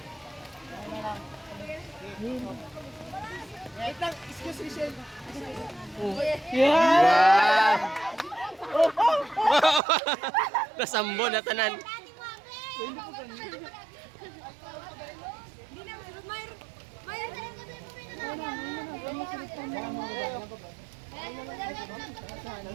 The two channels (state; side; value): drops out; left; at 9.8 s